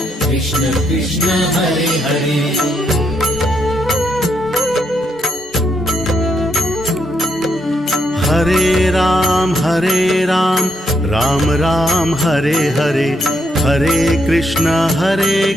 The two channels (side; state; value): both; normal; correlation 0.77